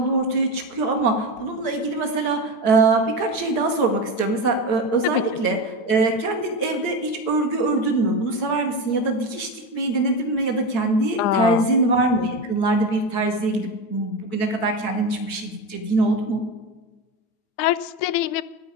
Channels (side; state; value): right; late; 8.6 ms